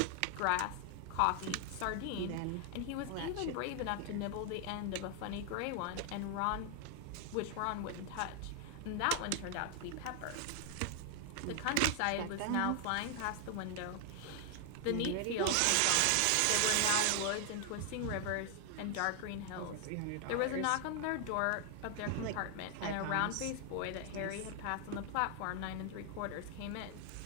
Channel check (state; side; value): different; both; correlation 0.00